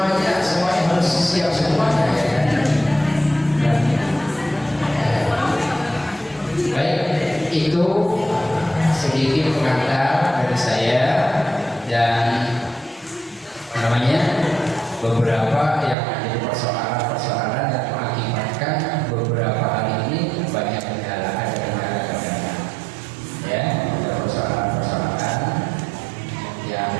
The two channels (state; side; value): drops out; left; at 16.0 s